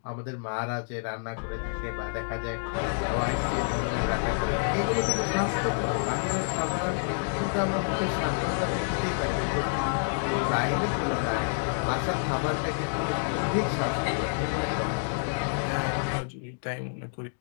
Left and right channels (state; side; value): silent; right; digital silence